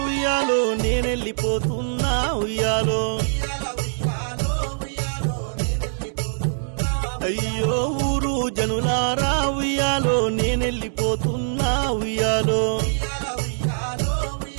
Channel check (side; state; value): left; silent; digital silence